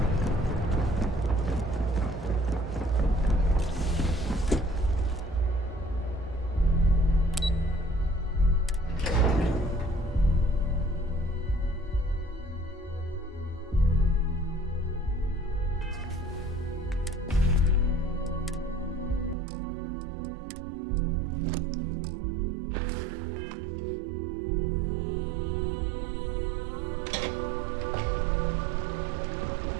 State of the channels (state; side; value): drops out; left; at 19.4 s